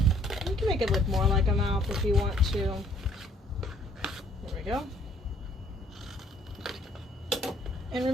You can make it look more like a mouth if you want to. There we go. And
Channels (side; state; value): both; normal; correlation 0.62